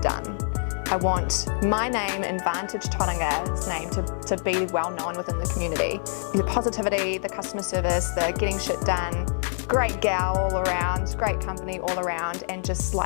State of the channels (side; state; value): right; silent; 61 dB below the other